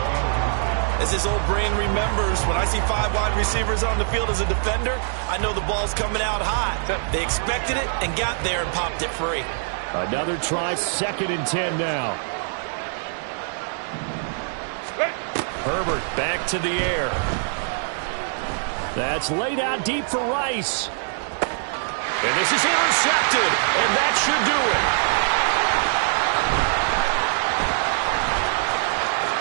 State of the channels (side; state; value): left; silent; 63 dB below the other